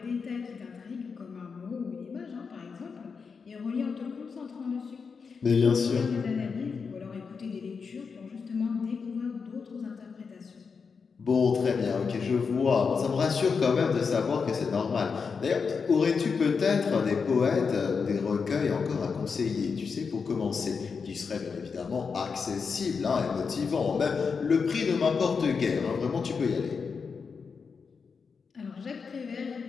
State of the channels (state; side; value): quieter; right; 5.5 dB